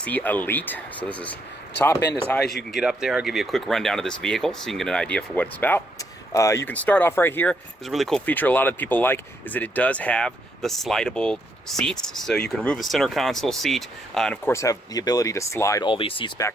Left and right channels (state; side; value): normal; both; correlation 0.75